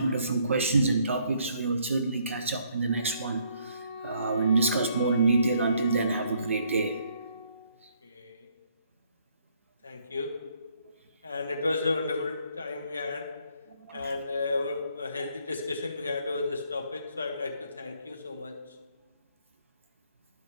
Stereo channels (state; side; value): inverted; both; correlation -0.68